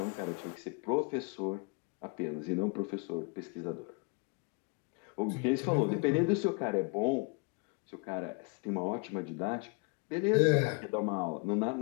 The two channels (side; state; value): right; quieter; 34.2 dB